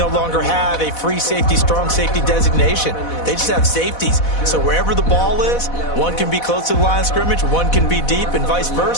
longer have a free safety, strong safety designation. They just have safeties. So wherever the ball is, one can be close to the line of scrimmage, one can be deep, and vice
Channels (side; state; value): right; late; 4.1 ms